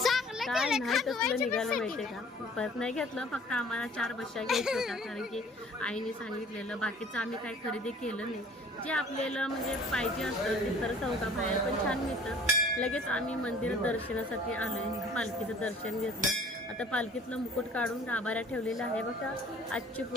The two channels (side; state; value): both; normal; correlation 0.51